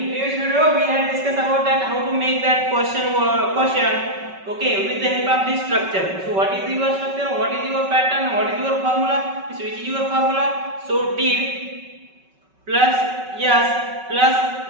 previous video, we had discussed about that how to make that question. Okay, with the help of this structure. So, what is your structure? What is your pattern? What is your formula? Which is your formula? So, did plus yes plus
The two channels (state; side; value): late; left; 5.3 ms